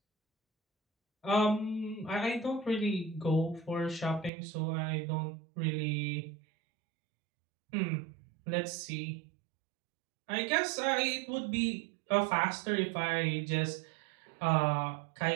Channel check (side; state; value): left; drops out; at 4.3 s